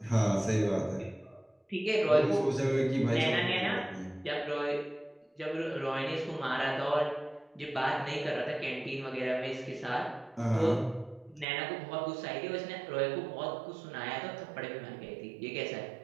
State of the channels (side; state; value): left; drops out; at 11.5 s